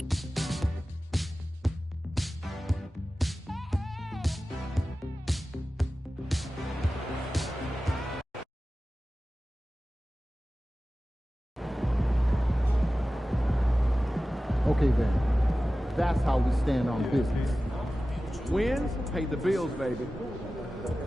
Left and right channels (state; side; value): normal; both; correlation 0.95